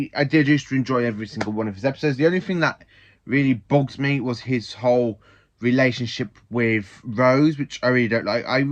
did used to enjoy every single one of his episodes. The only thing that really bugs me was his whole relationship with Rose, which I really don't like. I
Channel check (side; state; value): both; identical; correlation 1.00